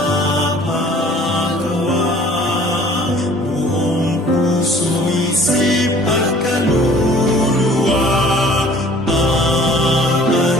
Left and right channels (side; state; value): both; normal; correlation 0.51